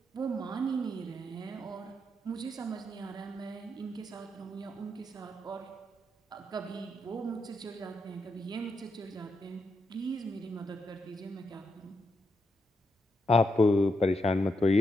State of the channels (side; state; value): both; normal; correlation 0.82